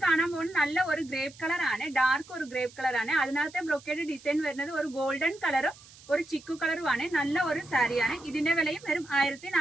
കാണാൻ പോകുന്നത് നല്ല ഒരു ഗ്രേപ്പ് കളർ ആണ്. ഡാർക്ക് ഒരു ഗ്രേപ്പ് കളർ ആണ്. അതിനകത്തെ ബ്രൊക്കേഡ് ഡിസൈൻ വരുന്നത് ഒരു ഗോൾഡൻ കളറും ഒരു ചിക്കു കളറുമാണ്. നല്ല ഒരു സാരിയാണ്. ഇതിന്റെ വിലയും വരും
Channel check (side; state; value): right; noise; hiss, 22 dB below the sound